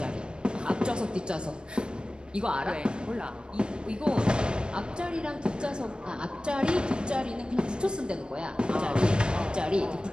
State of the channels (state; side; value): late; left; 0.053 ms